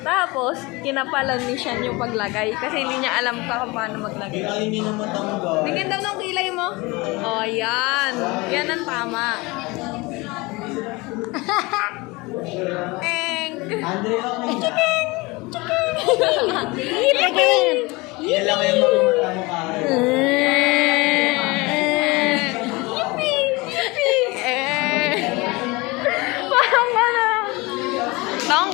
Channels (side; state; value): right; quieter; 24.0 dB